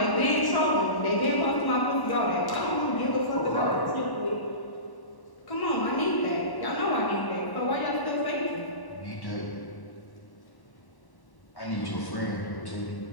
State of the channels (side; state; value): right; late; 1.1 ms